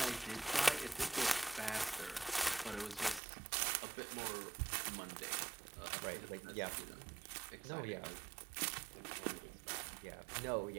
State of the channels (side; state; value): left; drops out; at 3.2 s